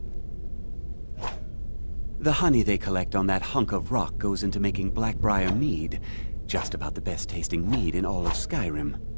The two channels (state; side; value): inverted; both; correlation -1.00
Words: The honey they collect on that hunk of rock goes into making Blackbriar mead, just about the best tasting mead in all of Skyrim.